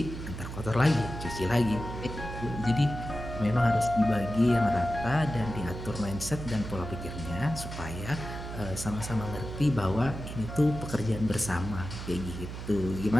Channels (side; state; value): right; noise; hum, 8 dB below the sound